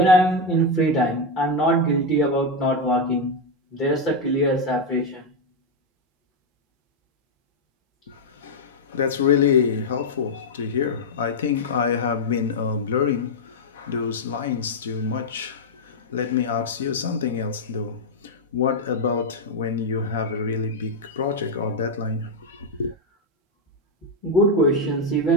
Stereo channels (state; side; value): normal; both; correlation 0.03